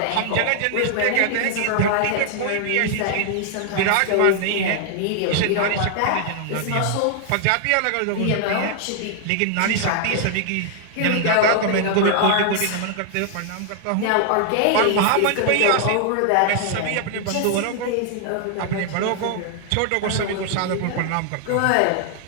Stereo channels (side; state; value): both; different; correlation 0.00